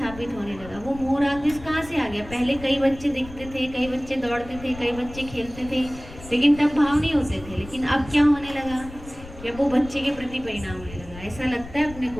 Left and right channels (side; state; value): left; noise; rumble, 15 dB below the sound